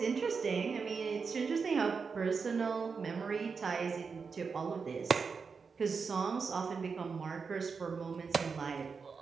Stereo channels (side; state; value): left; quieter; 5.3 dB